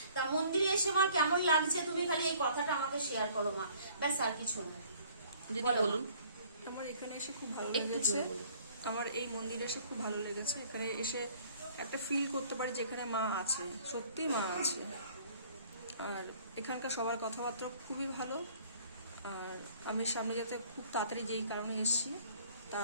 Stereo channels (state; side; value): inverted; both; correlation -0.56